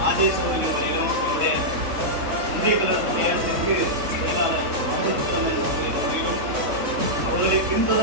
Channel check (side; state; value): left; late; 3.6 ms